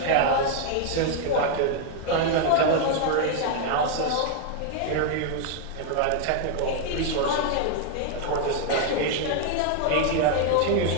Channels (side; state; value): both; different; correlation 0.00